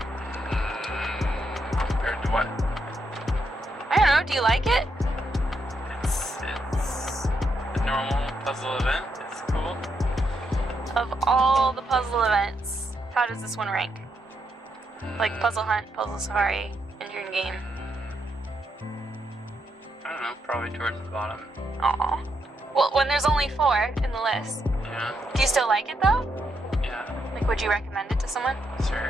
Compared to what? I don't know. Do you like it? It's a normal puzzle event. It's cool. Of all the puzzle events, how does this one rank? Like Puzzle Hunt, Puzzle Safari, Intern Game. I don't know, probably towards the bottom. Aw. Well, when there's only 4 in the list. Yeah. Do you still like it though? Yeah. Like, would you recommend it to someone?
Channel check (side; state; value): both; normal; correlation 0.80